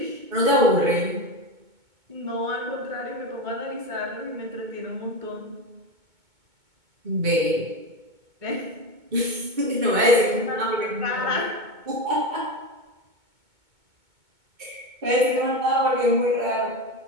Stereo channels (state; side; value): late; left; 2.2 ms